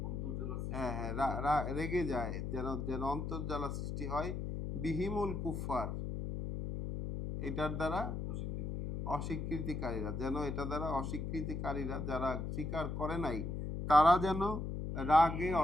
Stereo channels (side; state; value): left; noise; hum, 4 dB below the sound